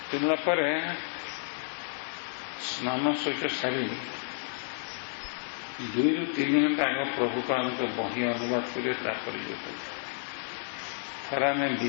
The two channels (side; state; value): right; silent; digital silence